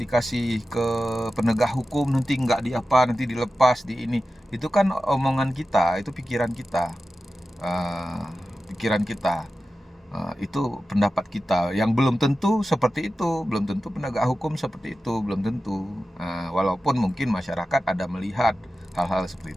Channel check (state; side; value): normal; both; correlation 0.94